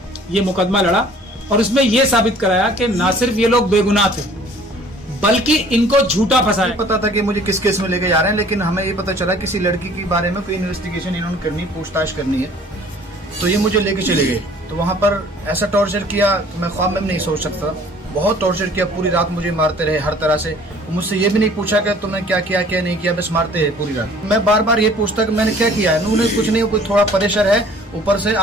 ये मुकदमा लड़ा और उसमें यह साबित कराया कि ना सिर्फ ये लोग बेगुनाह थे, बल्कि इनको झूठा फंसाया। पता था कि मुझे किस केस में लेके जा रहे हैं, लेकिन हमें ये पता चला किसी लड़की के बारे में कोई इन्वेस्टिगेशन इन्होंने करनी, पूछताछ करनी है, तो ये मुझे लेके चले गए। तो वहाँ पर ऐसा टॉर्चर किया तो मैं ख्वाब में नहीं सोच सकता। बहुत टॉर्चर किया, पूरी रात मुझे मारते रहे हर तरह से। मुझसे ये भी नहीं पूछा कि तुमने क्या किया क्या नहीं किया, बस मारते रहे पूरी रात। मैं बार बार ये पूछता कि मैंने क्या किया है। उन्होंने कुछ नहीं, कोई थोड़ा प्रेशर है ऊपर से,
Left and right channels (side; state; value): both; normal; correlation 0.52